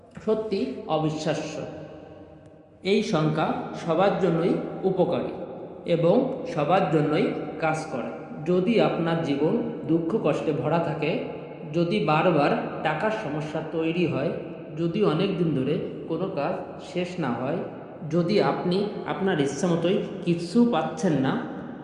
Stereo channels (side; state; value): both; identical; correlation 1.00